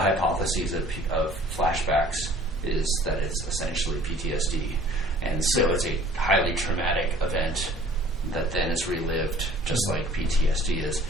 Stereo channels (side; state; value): both; normal; correlation 0.51